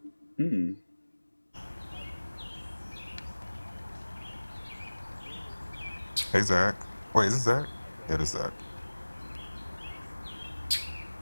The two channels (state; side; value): inverted; both; correlation -1.00